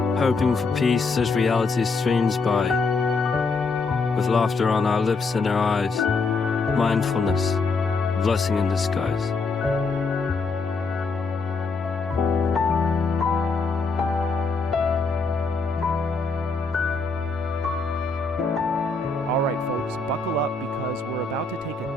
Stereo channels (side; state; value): right; quieter; 4.0 dB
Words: Hoping for peace as reality streams by, with laughter on our lips and our eyes. Mindfulness, blessing in disguise. All right, folks, buckle up because we're about to take